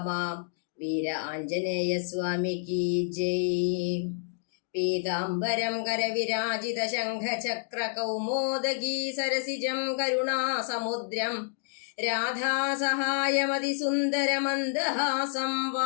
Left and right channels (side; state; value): right; silent; digital silence